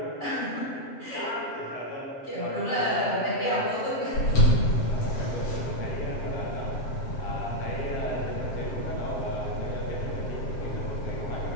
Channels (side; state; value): right; late; 7.6 ms